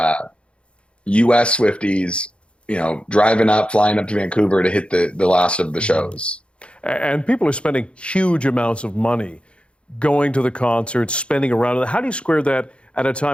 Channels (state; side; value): late; right; 0.058 ms